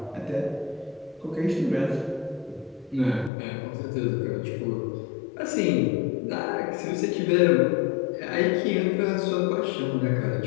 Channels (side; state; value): right; drops out; at 3.3 s